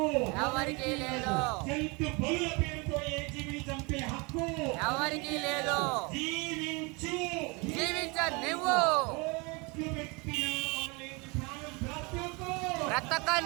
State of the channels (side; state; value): left; quieter; 28.6 dB